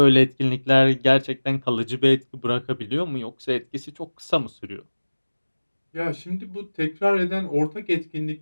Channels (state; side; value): inverted; both; correlation -1.00